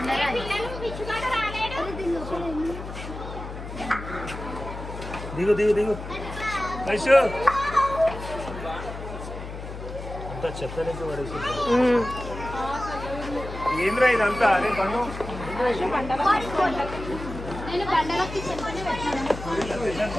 దిగు దిగు దిగు వైషు అంతా చెత్తలేక పడేసి ఏంద్రా ఇదంతా అదే పన్ను నేను బండలకి చెప్పని పెట్టాను.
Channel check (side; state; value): left; noise; hum, 10 dB below the sound